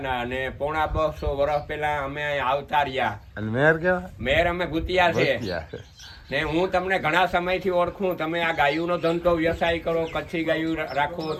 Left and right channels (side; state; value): both; identical; correlation 1.00